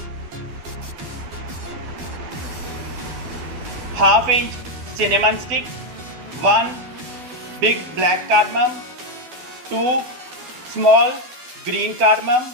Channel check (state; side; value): late; left; 12 ms